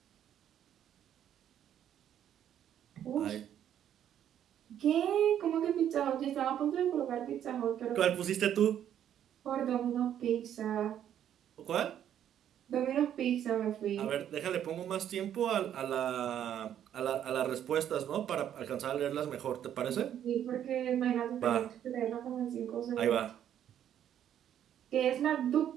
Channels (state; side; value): quieter; left; 10.2 dB